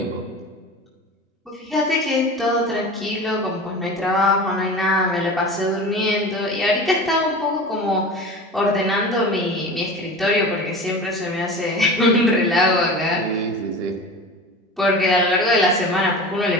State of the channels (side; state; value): both; normal; correlation 0.34